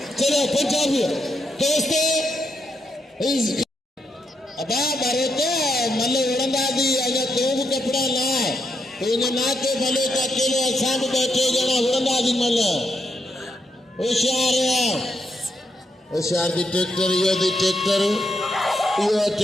चलो पंजाबी दोस्तों अबा भरोते मल उड़ंदा दी अगर तू भी कपड़ा ना तो इन्हें ना के भले तो अकेले असां भी बैठे जना उड़ंदा दी मल होशियार दी ट्रैक्टर यो दी ट्रैक्टर यो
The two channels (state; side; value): normal; both; correlation 0.80